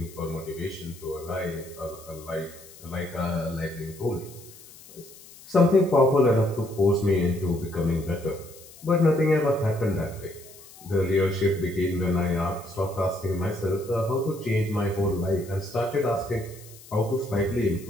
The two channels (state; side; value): noise; left; hiss, 20 dB below the sound